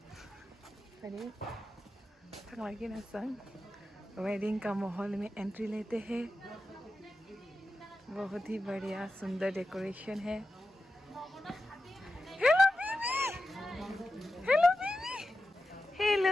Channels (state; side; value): normal; both; correlation 0.91